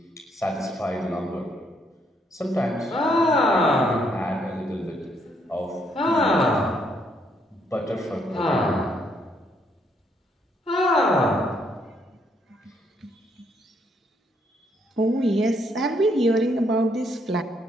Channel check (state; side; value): normal; both; correlation 0.72